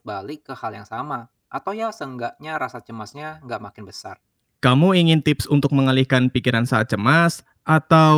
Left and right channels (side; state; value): both; identical; correlation 1.00